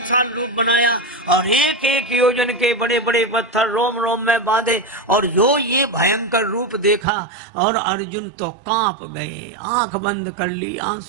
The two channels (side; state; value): left; drops out; at 7.1 s